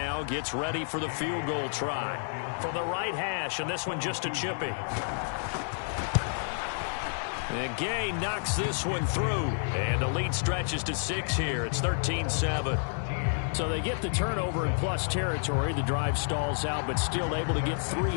gets ready for the field goal try. From the right hash, and this one just a chippy. And Gay knocks this one through. And the lead stretches to 6 here. It's 13-7. So they get the turnover in plus territory. The drive stalls out, but still able to get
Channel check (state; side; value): silent; right; digital silence